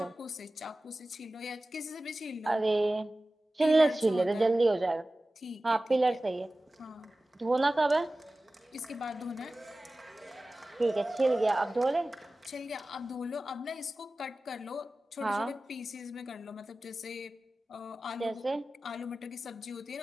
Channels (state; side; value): normal; both; correlation 0.96